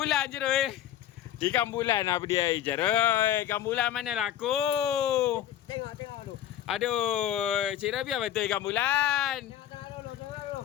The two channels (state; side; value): quieter; right; 11.4 dB